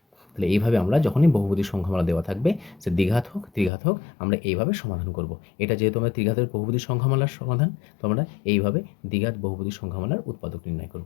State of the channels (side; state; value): right; drops out; at 3.7 s